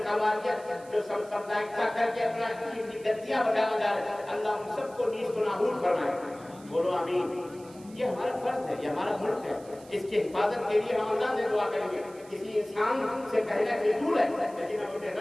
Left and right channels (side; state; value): right; noise; hiss, 24 dB below the sound